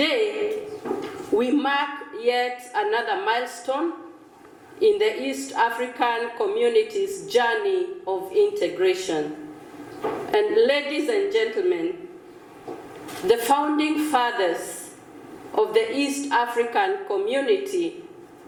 we mark yet another milestone in the East African community's journey of integration. And ladies and gentlemen, the founding fathers of the East African community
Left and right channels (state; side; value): identical; both; correlation 1.00